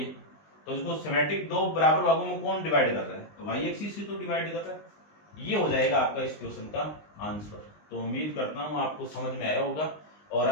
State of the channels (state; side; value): late; right; 20 ms